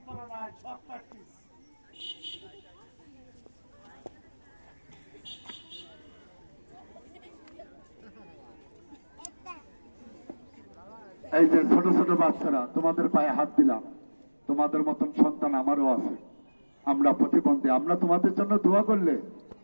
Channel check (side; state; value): both; inverted; correlation -1.00